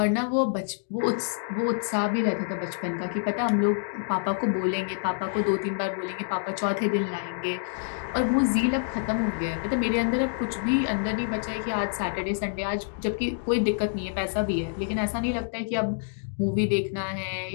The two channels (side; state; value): right; silent; digital silence